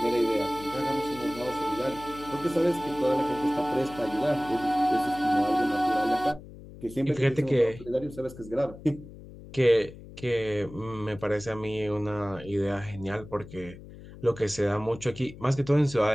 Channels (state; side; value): noise; left; hum, 16 dB below the sound